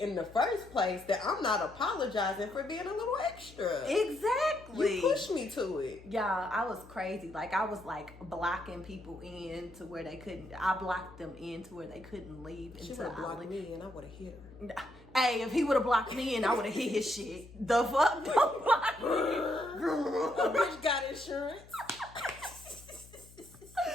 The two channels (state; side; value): noise; left; hum, 21 dB below the sound